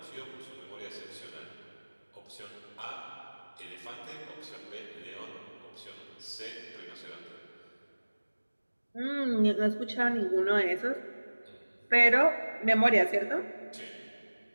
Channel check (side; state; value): both; inverted; correlation -1.00